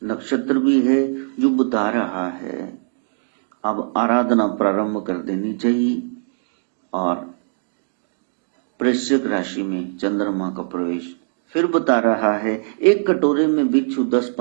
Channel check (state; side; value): silent; left; digital silence